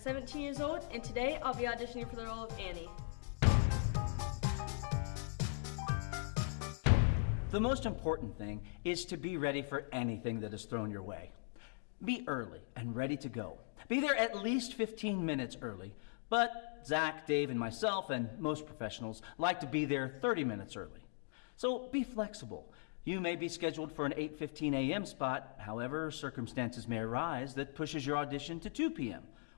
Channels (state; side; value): silent; right; digital silence